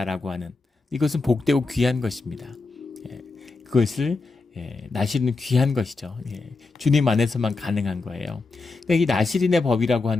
하는, 이것은 복되고 귀한 것입니다. 그것을 나시린은 귀한 것이죠. 주님 안에서만 가능한 거예요. 그러니까 이 나시린의 법이라고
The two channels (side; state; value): right; quieter; 3.7 dB